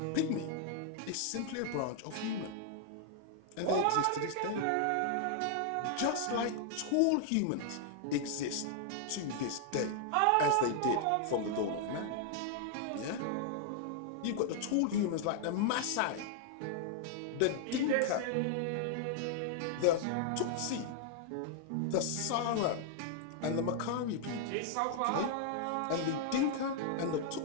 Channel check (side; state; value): both; different; correlation 0.00